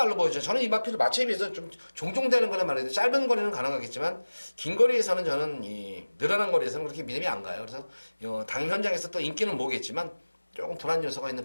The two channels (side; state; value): both; inverted; correlation -1.00